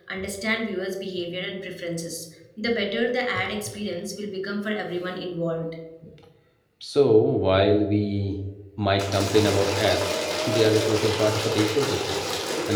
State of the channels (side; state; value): both; identical; correlation 1.00